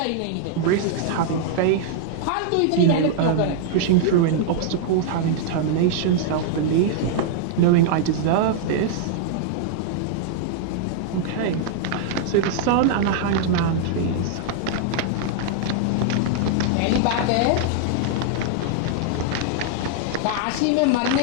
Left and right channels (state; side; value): different; both; correlation -0.01